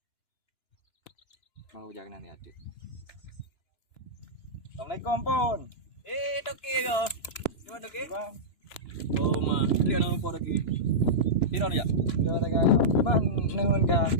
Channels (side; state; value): right; late; 2.9 ms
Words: Mau jaga nanti ada. Assalamualaikum pun. Toki ke? Di mana toki? Bang. Oh mah, dia nak lupa toki. Piro dia? Dia ada gaya. Bang ni hun ka.